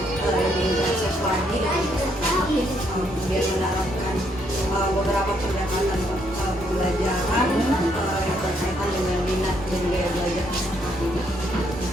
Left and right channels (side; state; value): both; normal; correlation 0.72